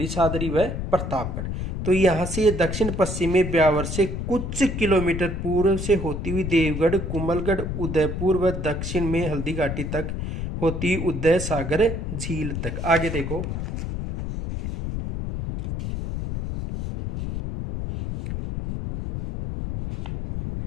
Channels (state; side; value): noise; left; rumble, 4 dB below the sound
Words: सादरी व प्रतापगढ़। तो यहाँ से दक्षिण पश्चिम में ब्यावर से कुछ किलोमीटर पूर्व से होती हुई देवगढ़, कुंभलगढ़, उदयपुर व दक्षिण में हल्दीघाटी तक होती उदय सागर झील तक। आगे देखो